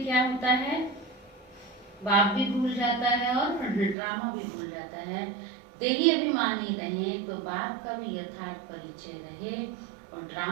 क्या होता है, बाप भी भूल जाता है और ड्रामा भी भूल जाता है। देही अभिमानी रहे तो बाप का भी यथार्थ परिचय रहे और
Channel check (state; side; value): drops out; left; at 4.0 s